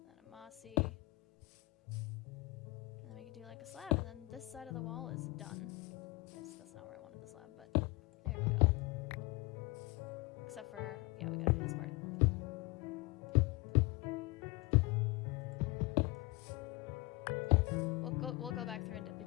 and then a mossy. And then we can do like a slab, and then this side of the wall is done. That's not where I wanted the slab, but there we go. Except for, yeah, we gotta do this part. We'll go back through and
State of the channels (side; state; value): right; quieter; 22.7 dB